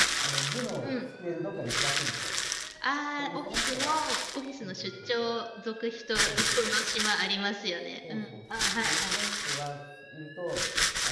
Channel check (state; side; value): identical; both; correlation 1.00